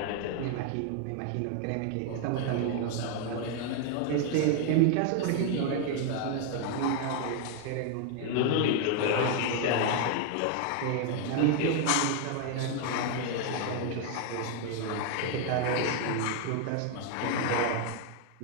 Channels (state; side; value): different; both; correlation 0.00